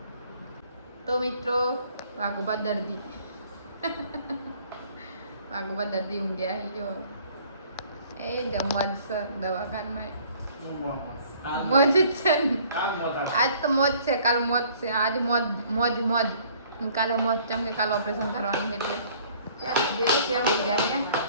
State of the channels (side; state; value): both; inverted; correlation -0.57